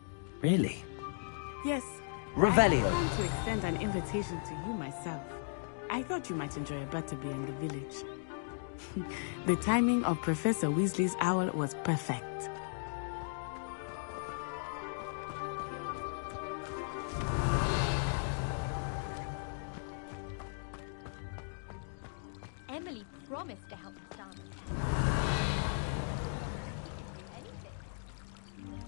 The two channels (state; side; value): silent; right; digital silence